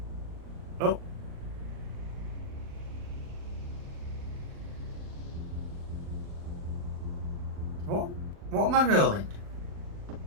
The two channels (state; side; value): late; left; 39 ms